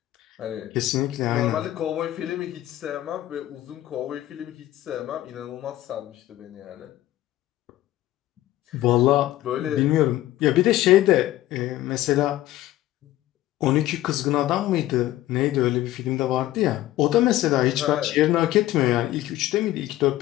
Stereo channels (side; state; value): right; quieter; 14.9 dB